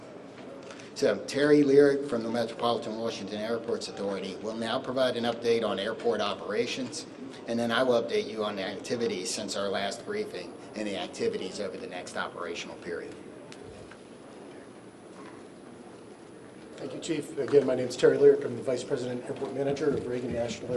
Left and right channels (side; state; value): both; identical; correlation 1.00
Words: So Terry Lyric from the Metropolitan Washington Airports Authority will now provide an update on airport operations, and then I will update you on the activities since our last briefing and the activities over the next operational period. Thank you, Chief. Again, my name is Terry Lyric. I'm the Vice President Airport Manager of Reagan National